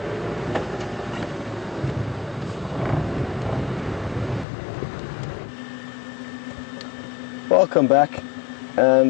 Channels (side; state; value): right; drops out; at 4.5 s